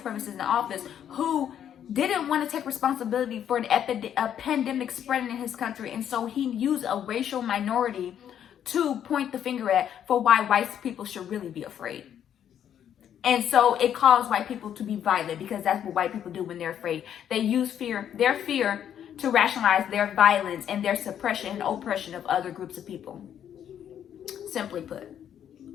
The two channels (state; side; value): quieter; right; 9.6 dB